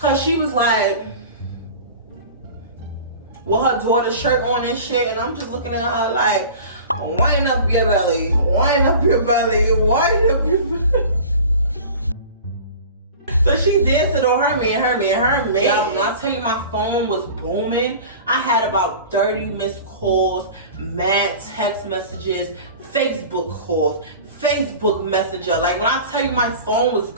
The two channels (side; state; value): both; inverted; correlation -0.39